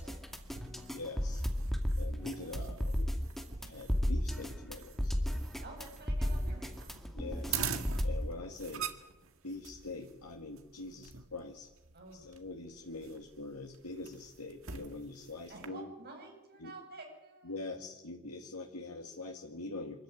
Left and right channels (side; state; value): both; normal; correlation 0.73